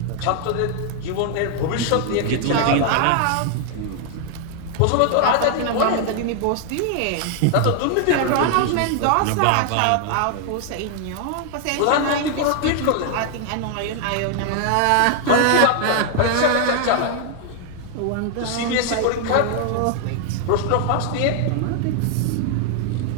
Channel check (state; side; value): different; both; correlation 0.00